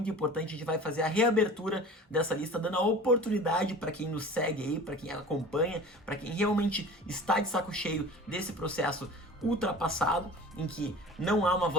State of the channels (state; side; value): normal; both; correlation 0.39